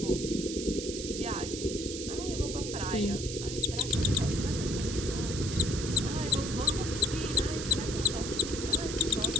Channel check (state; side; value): noise; right; hiss, 7 dB below the sound